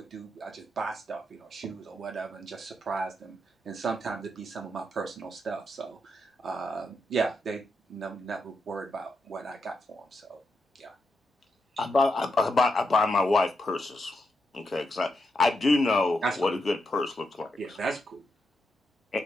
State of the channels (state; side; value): normal; both; correlation 0.83